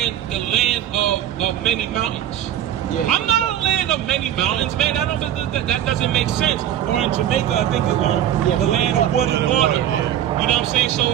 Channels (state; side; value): quieter; left; 11.2 dB